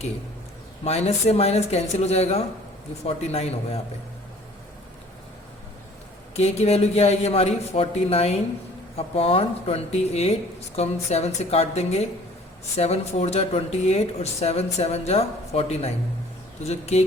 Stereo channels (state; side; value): normal; both; correlation 0.52